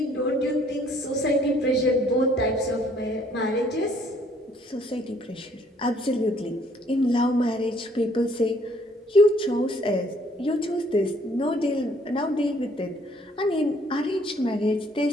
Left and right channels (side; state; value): both; normal; correlation 0.62